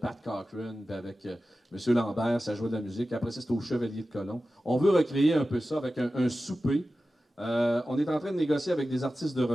Pat Cochran, puis avec M. Lambert, ça jouait de la musique. Après ça, c'était au Chevalier de Colomb. On veut recréer un peu ça avec un souper. On est en train de négocier avec des artistes de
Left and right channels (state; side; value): normal; both; correlation 0.94